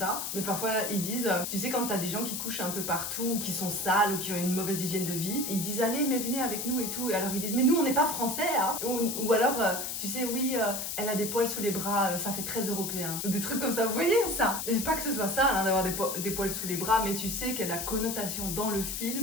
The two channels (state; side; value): noise; left; hiss, 4 dB below the sound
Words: mais parfois ils disent, tu sais quand t'as des gens qui couchent un peu partout, qui sont sales ou qui ont une mauvaise hygiène de vie, ils disent allez mais venez avec nous et tout. Et alors ils disent mais nous on n'est pas français hein. Ou alors tu sais oui elle a des poils sous les bras, ça fait très européen. Ou des trucs comme ça, vous voyez ça? Et pas que ce soit ça hein, d'avoir des poils sous les bras, mais tu sais que la connotation dans le